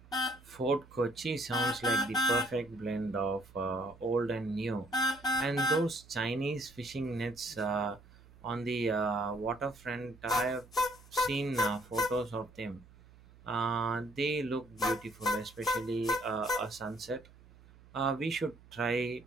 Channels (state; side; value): noise; right; hum, 23 dB below the sound